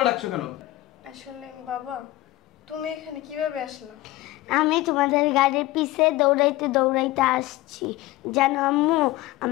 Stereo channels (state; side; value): quieter; right; 17.5 dB